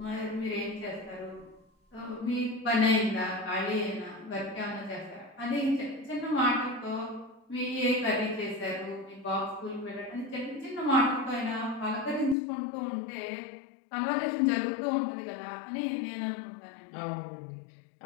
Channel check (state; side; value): drops out; right; at 12.4 s